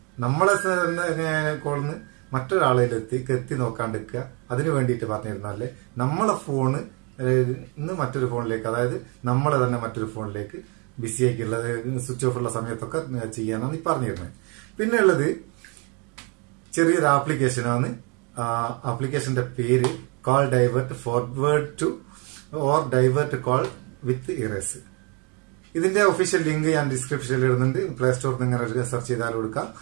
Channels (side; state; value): left; quieter; 32.8 dB